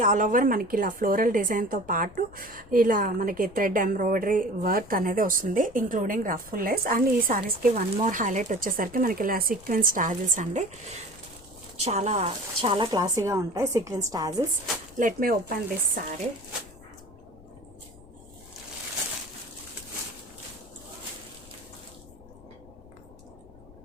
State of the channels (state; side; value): noise; left; rumble, 22 dB below the sound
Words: ఆల్ ఓవర్ మనకి ఇలా ఫ్లోరల్ డిజైన్తో పాటు ఇలా మనకి థ్రెడ్ ఎంబ్రాయిడరీ వర్క్ అనేది వస్తుంది, ఇంక్లూడింగ్ రఫుల్ లేస్. అండ్ ఈ శారీస్కి వన్ మోర్ హైలైట్ వచ్చేసరికి మనకి ఇలా సీక్వెన్స్ టాజిల్స్ అండి. చాలా చాలా క్లాసీగా ఉంటాయి sequence tassels. Let me open this sari.